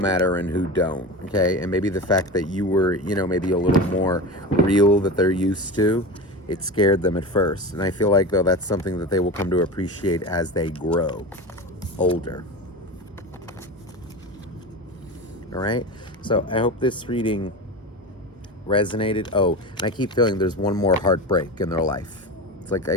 and who don't, okay? And maybe the fact that you were, maybe a little more real that they're used to, it scared them at first. And I feel like, though, that's something that they will come to appreciate as they grow older. All right? So I hope this reading resonated. Oh, and I keep feeling there's one more heartbreak in their life. It's like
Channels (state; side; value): normal; both; correlation 0.26